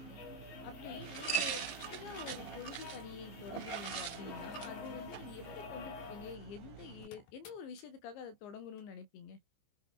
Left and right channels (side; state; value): right; late; 15 ms